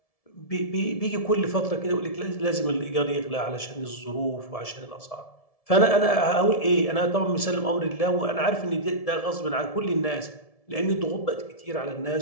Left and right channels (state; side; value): late; right; 1.7 ms